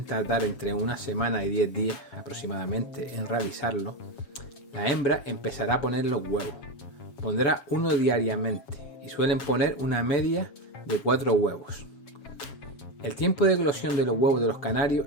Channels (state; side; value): late; right; 7.3 ms